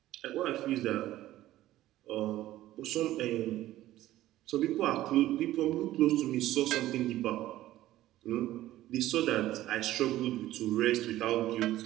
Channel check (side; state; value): left; quieter; 14.8 dB